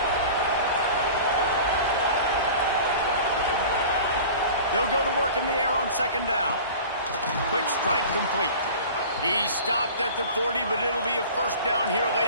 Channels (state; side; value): inverted; both; correlation -0.40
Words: They'll go to work in the air on 2nd down. Quick strike complete. He's stopped at the 40, but it'll be a first down here